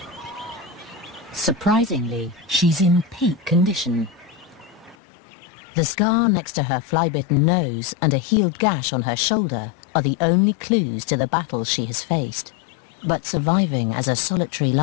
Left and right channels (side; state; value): right; drops out; at 5.0 s